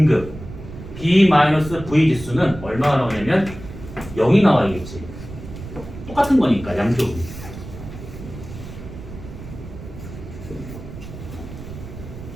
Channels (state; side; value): noise; right; rumble, 12 dB below the sound